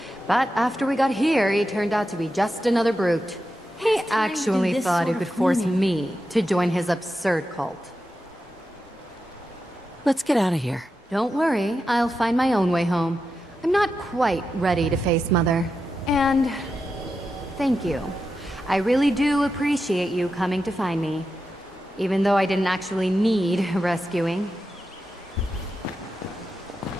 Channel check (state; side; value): normal; both; correlation 0.89